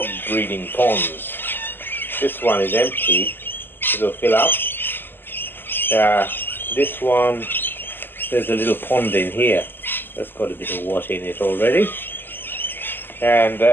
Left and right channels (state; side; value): late; right; 0.095 ms